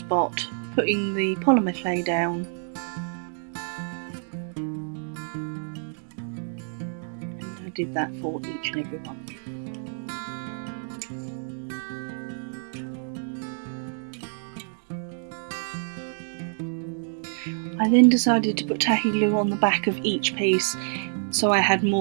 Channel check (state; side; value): silent; left; digital silence